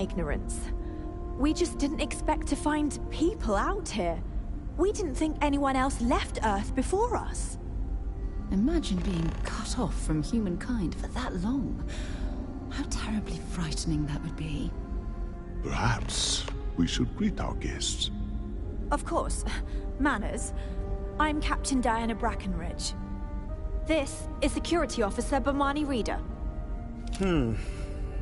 ignorance. We just didn't expect to find people out here. We didn't think anyone else left Earth before us. Imagine being cut off from humankind for that long. How terribly frightening that would be. Perhaps we should greet our guests. Of course. Manners. I'm Captain Diana Brackenridge. This is Security Officer Bomani Reader.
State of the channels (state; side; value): identical; both; correlation 1.00